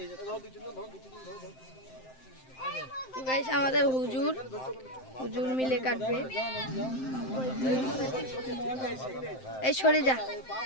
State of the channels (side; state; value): right; late; 7.7 ms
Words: আমাদের হুজুর মিলে কাটবে। এই সরে যা,